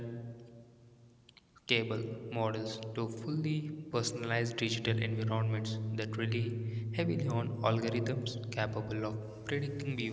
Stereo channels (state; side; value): identical; both; correlation 1.00